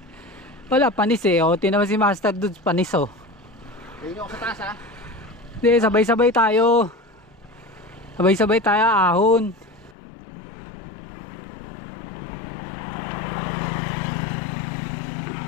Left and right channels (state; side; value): drops out; right; at 10.0 s